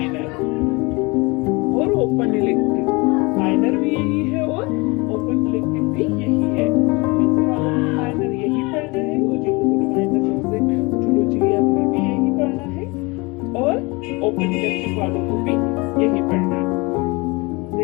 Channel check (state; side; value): quieter; right; 26.1 dB